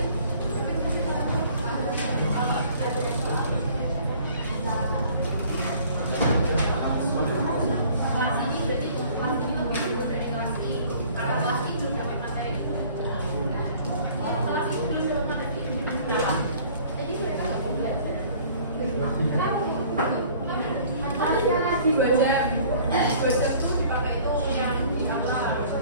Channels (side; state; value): both; inverted; correlation -0.52